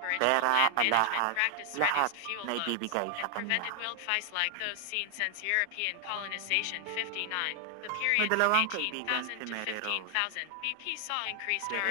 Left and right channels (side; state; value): both; different; correlation 0.00